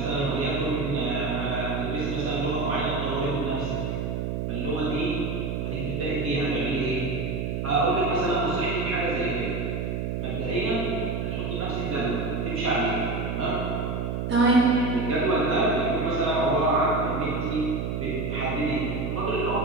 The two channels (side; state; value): right; noise; hum, 2 dB below the sound